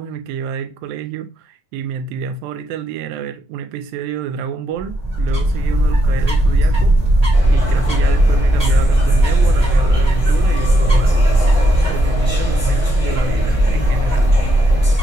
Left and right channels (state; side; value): normal; both; correlation 0.79